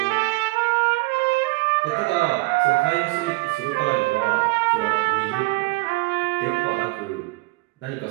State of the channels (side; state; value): left; quieter; 24.0 dB